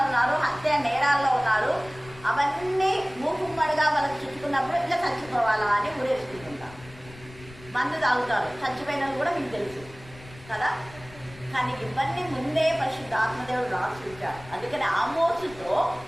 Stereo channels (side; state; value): left; noise; rumble, 20 dB below the sound